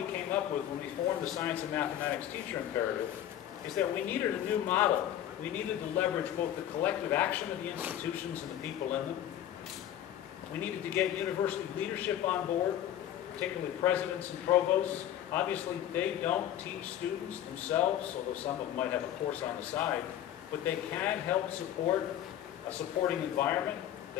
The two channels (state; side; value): quieter; right; 11.5 dB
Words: came up with when we formed the Science and Mathematics Teacher Imperative is that we needed a new model. We needed to leverage both the collective action of the institutions and the people in them. We needed to get university leadership on board, particularly presidents and provosts. Obviously, they don't teach students themselves, although some of them might have a course on the side, but they can help support a supporting environment.